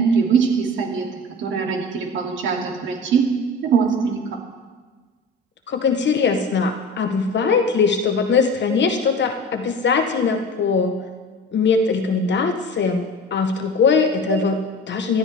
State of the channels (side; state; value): both; normal; correlation 0.35